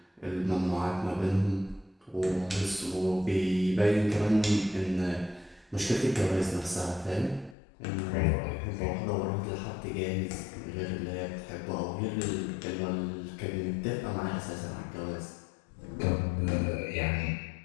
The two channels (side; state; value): right; drops out; at 7.6 s